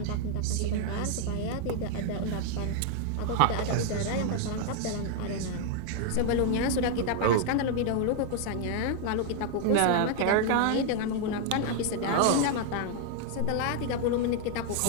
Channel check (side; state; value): both; different; correlation 0.00